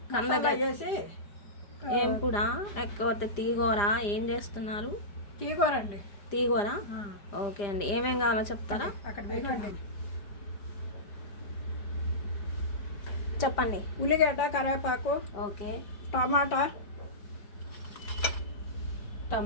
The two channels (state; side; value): late; right; 5.0 ms